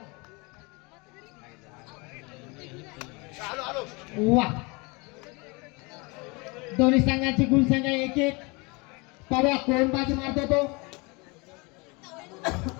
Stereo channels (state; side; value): quieter; right; 27.8 dB